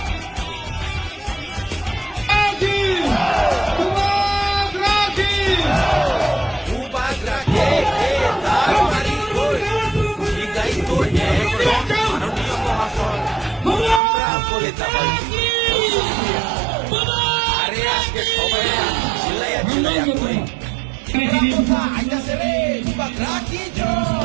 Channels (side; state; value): left; drops out; at 14.0 s